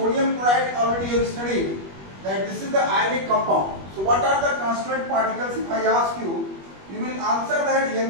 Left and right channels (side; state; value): left; late; 21 ms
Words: already you have studied that this is the ionic compound. So what are the constituent particles? If I ask you, you will answer that Na